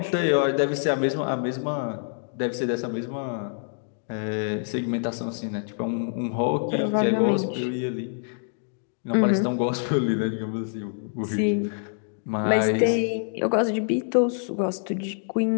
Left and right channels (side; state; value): right; silent; digital silence